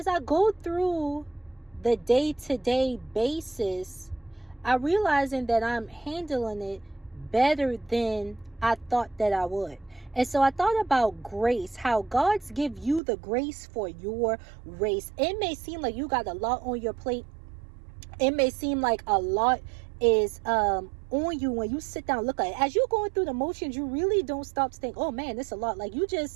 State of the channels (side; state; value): left; drops out; at 13.0 s